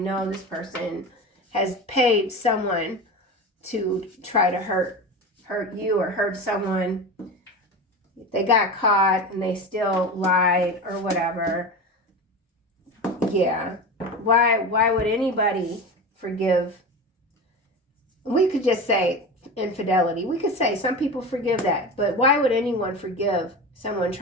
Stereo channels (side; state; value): both; normal; correlation 0.27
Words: this person has paid someone to try to hurt you or hurt someone. They got caught and they still lied or whatever. Yeah. Why would anybody forgive? We could just say infidelity. We could say some people forgive that, but why would anyone forgive someone